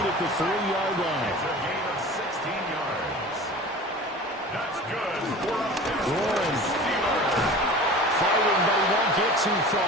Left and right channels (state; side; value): normal; both; correlation 0.39